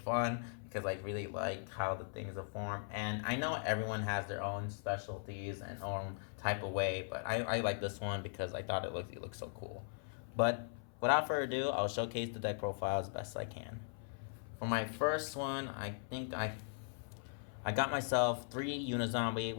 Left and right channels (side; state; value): right; silent; 52 dB below the other